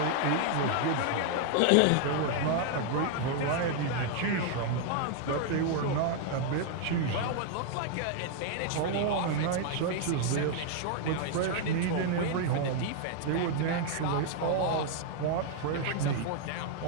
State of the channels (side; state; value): both; different; correlation 0.00